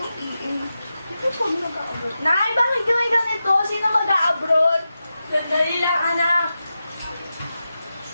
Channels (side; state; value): both; inverted; correlation -0.91